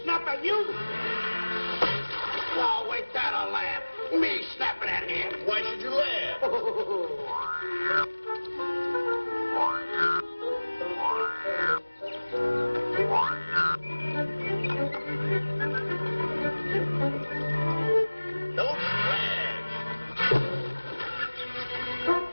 snap at you? Oh, wait, that'll laugh. Me snapping at him. Why should you laugh? Don't laugh.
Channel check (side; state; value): both; inverted; correlation -1.00